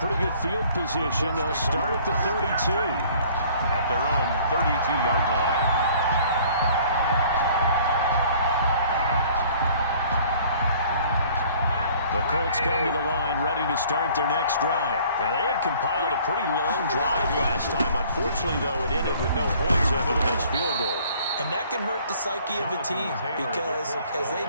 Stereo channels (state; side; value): inverted; both; correlation -0.54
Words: good field position. They'll start at the 32. At their own 32-yard line. The Colts come to the line ready to start their next drive. And they had compiled a pretty long drive last time. Unfortunately, though, it ended with no points after the missed field goal. And that can hurt the psyche of a team because as they